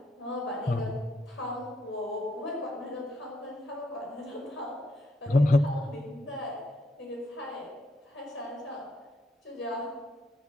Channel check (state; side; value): normal; both; correlation 0.75